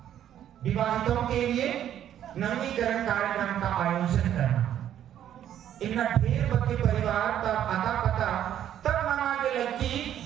विवाहितों के लिए नवीनीकरण कार्यक्रम का आयोजन करना। इनका ढेर बच्चे परिवार तब आता पता तब मनाने लगी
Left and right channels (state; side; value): quieter; left; 10.7 dB